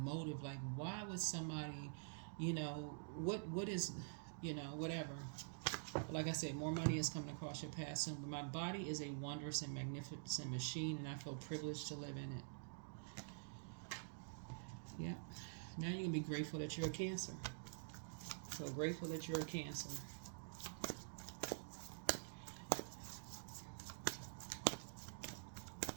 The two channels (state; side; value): silent; left; digital silence